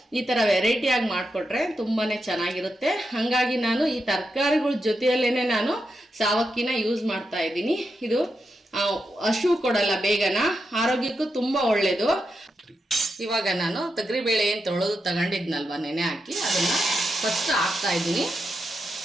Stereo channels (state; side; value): normal; both; correlation 0.86